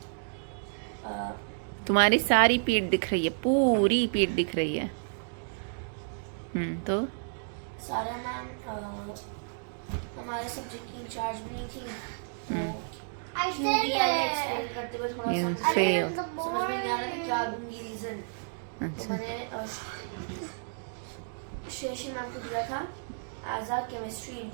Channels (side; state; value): left; silent; digital silence